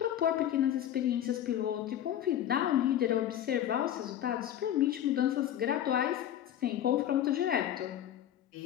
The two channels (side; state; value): right; quieter; 11.1 dB